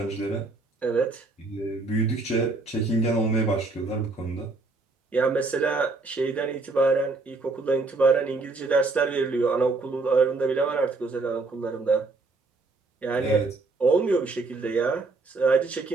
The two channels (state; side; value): quieter; left; 3.6 dB